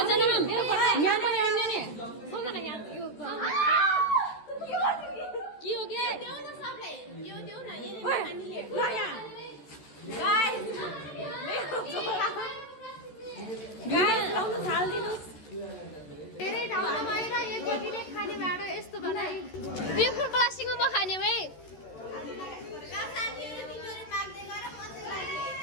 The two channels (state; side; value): late; right; 13 ms